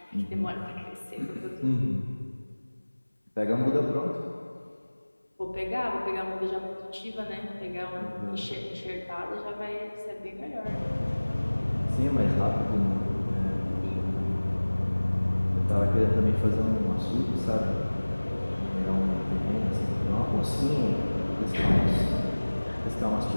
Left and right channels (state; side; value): inverted; both; correlation -1.00